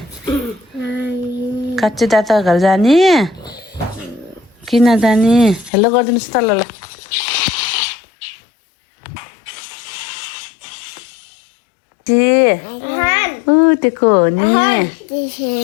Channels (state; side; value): drops out; right; at 5.7 s